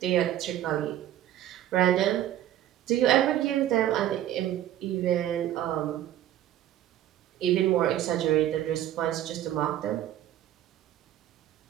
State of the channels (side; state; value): left; quieter; 12.3 dB